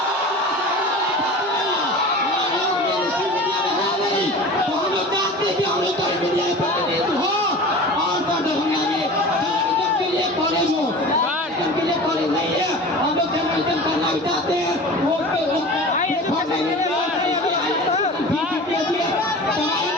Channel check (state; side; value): normal; both; correlation 0.36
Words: तो हम लोग चाहते हैं कि हम लोग मीडिया में प्रतिनिधित्व हो और दरभंगा में जर्नलिज्म के लिए कॉलेज हो। जर्नलिज्म के लिए कॉलेज नहीं है, हम लोग जर्नलिज्म करना भी चाहते हैं। वो